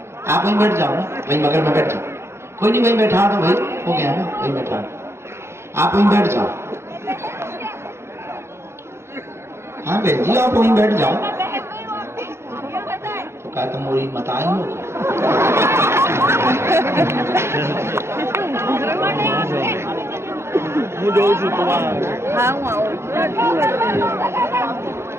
आप वहीं बैठ जाओ ना, वहीं बगल में बैठ जाओ। कोई नहीं, वहीं बैठा दो भाई, हो गया ना, वहीं बैठा दो। आप वहीं बैठ जाओ। हाँ बहन जी, आप वहीं बैठ जाओ। तो क्या तुम मोरी मत आई हो?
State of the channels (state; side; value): late; left; 0.13 ms